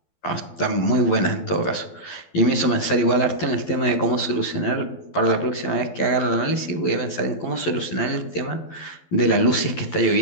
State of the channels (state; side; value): late; right; 12 ms